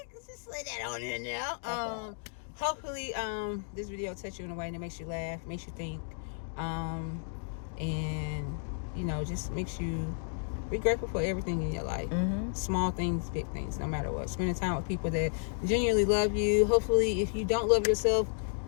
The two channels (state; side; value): silent; right; digital silence